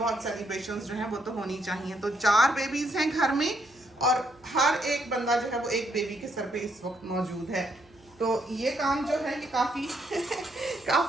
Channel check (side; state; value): right; noise; hum, 29 dB below the sound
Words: सेलिब्रेशंस जो हैं वो तो होनी चाहिए। तो 4 बेबीज़ हैं घर में और हर एक बंदा जो है वो एक बेबी के सर पे इस वक्त मौजूद है। तो ये काम जो है ये काफ़ी